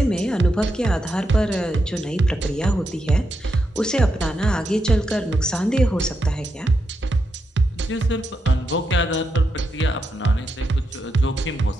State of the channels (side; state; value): both; normal; correlation 0.84